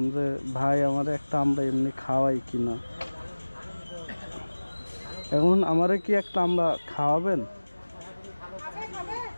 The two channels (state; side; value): inverted; both; correlation -1.00